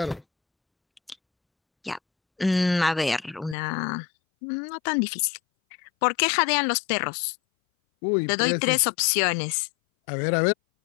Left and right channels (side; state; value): right; drops out; at 3.6 s